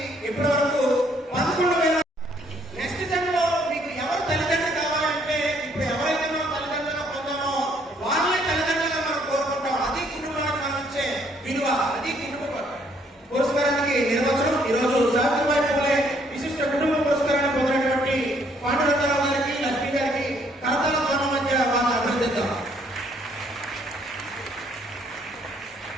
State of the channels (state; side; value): normal; both; correlation 0.67